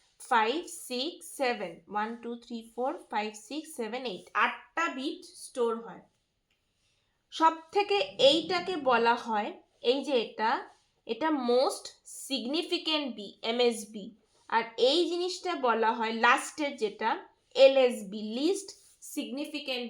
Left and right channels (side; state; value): both; identical; correlation 1.00